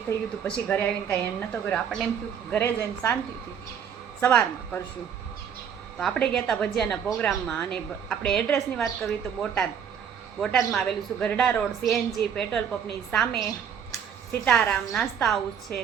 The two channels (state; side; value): quieter; left; 7.9 dB